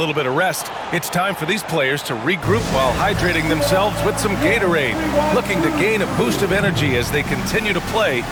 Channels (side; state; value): both; identical; correlation 1.00